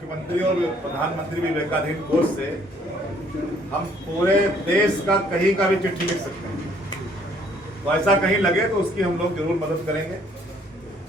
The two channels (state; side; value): normal; both; correlation 0.62